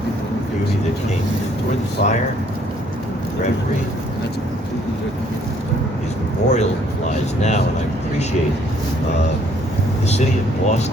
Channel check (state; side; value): normal; both; correlation 0.64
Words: beauty that came toward the fire. Reverie is memorialized now, and I appreciate the city of